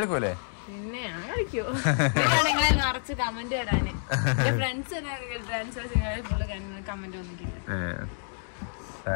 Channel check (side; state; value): right; silent; digital silence